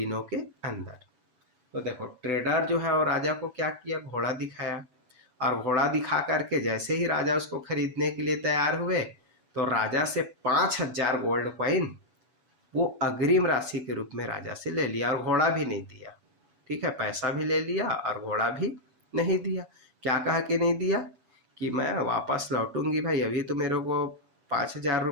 के अंदर। तो देखो ट्रेडर जो है वो राजा को क्या किया? घोड़ा दिखाया, और घोड़ा दिखा करके जैसे ही राजा उसको खरीदने के लिए तैयार हुए तो राजा से 5,000 गोल्ड कॉइन वो अग्रिम राशि के रूप में राजा से ले लिया, और घोड़ा भी नहीं दिया। ठीक है, पैसा भी ले लिया और घोड़ा भी नहीं दिया। क्या कहा कि नहीं दिया? कि मैं वापस लौटूंगी भाई, अभी तो मेरे को 5,000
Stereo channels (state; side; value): late; left; 7.1 ms